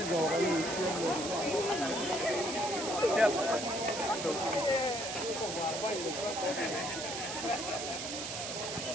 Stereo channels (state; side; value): noise; right; hiss, 5 dB below the sound